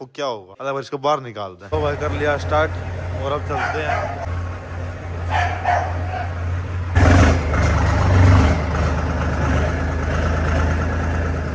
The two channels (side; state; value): both; identical; correlation 1.00